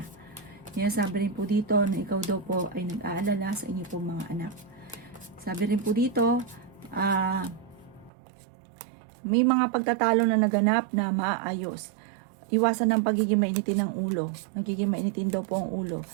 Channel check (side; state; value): left; drops out; at 8.1 s